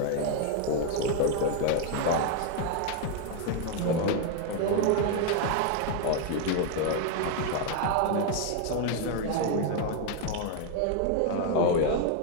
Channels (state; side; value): different; both; correlation 0.01